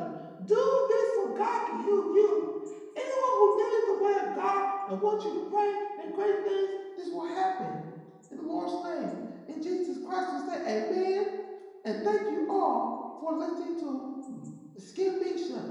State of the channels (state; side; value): identical; both; correlation 1.00